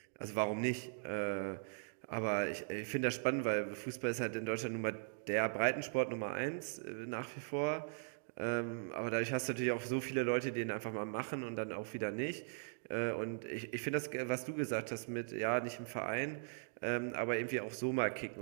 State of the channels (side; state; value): left; silent; digital silence